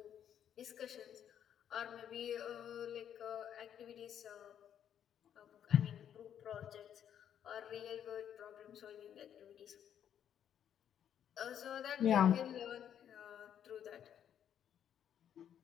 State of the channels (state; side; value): quieter; right; 9.4 dB